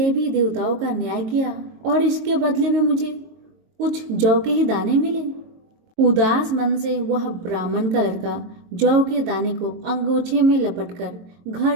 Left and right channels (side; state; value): left; late; 22 ms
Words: देवताओं का न्याय किया और इसके बदले में मुझे कुछ जौ के ही दाने मिले। उदास मन से वह ब्राह्मण का लड़का जौ के दाने को अंगोछे में लपटकर